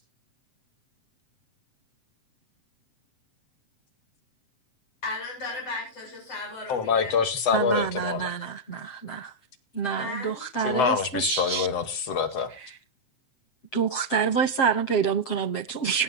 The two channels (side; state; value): right; late; 7.5 ms